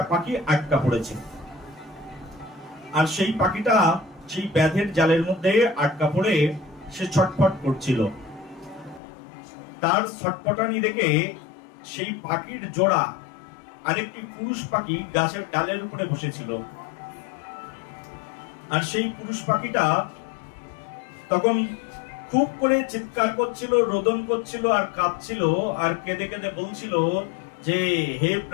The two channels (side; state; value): right; drops out; at 9.0 s